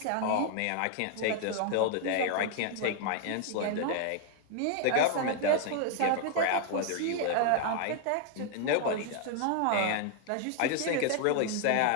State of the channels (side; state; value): both; different; correlation 0.00